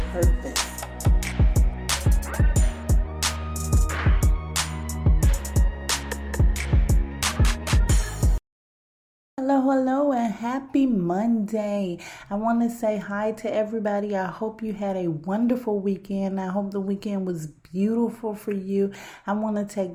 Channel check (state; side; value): identical; both; correlation 1.00